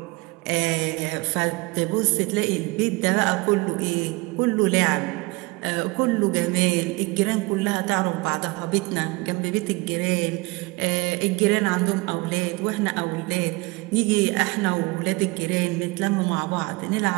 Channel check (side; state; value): left; quieter; 24.7 dB